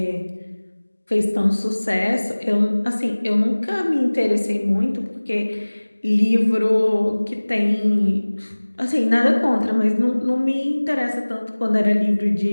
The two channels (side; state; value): both; inverted; correlation -1.00